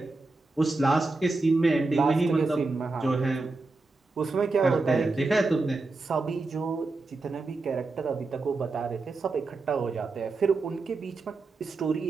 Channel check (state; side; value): quieter; left; 3.5 dB